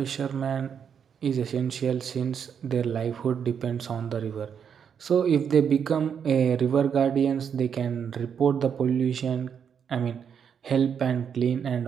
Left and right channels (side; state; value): left; quieter; 7.5 dB